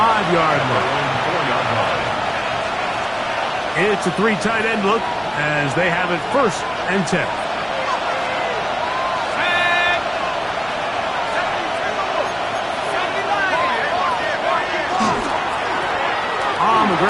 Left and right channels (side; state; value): both; identical; correlation 1.00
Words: line. It's a 3 tight end look as they have it 1st and 10. On the